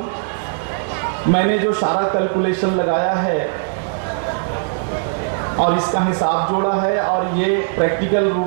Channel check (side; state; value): left; silent; digital silence